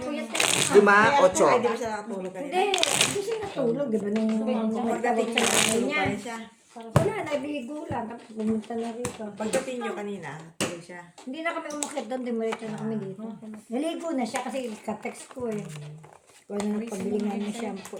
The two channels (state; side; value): identical; both; correlation 1.00